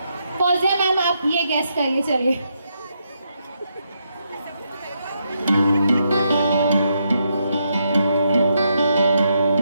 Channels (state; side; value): inverted; both; correlation -0.80